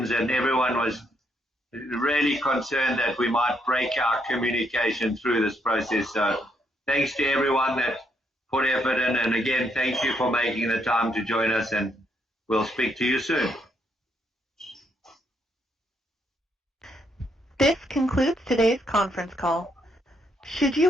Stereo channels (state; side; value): normal; both; correlation 0.75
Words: and everyone was really concerned that we might break our communication through this process. So thanks to everyone that put effort in, and again, thank you for making the time to join us, and we'll speak to you soon. This concludes today's conference call. Should you